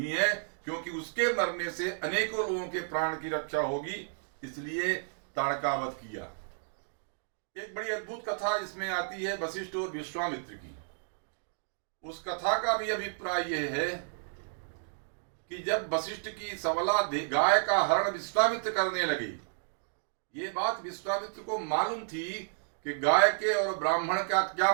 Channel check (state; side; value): silent; left; digital silence